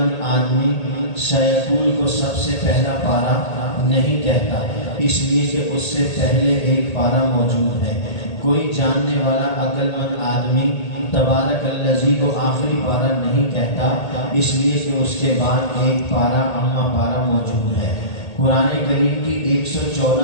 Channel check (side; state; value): right; late; 1.8 ms